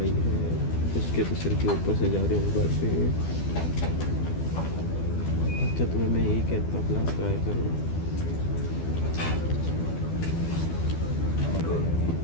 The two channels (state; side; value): late; right; 12 ms